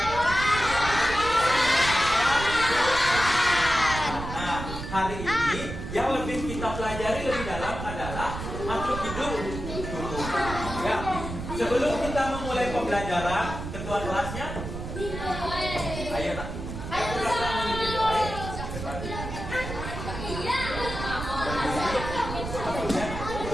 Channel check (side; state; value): right; noise; rumble, 7 dB below the sound